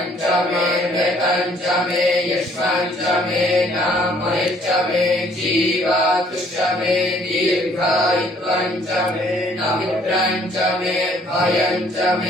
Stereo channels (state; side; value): normal; both; correlation 0.61